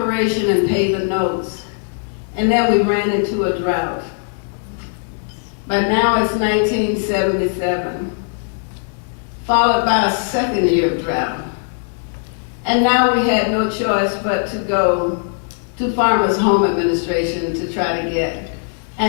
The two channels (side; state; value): right; silent; digital silence